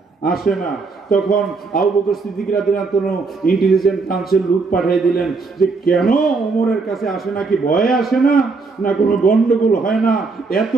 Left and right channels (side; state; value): left; quieter; 4.2 dB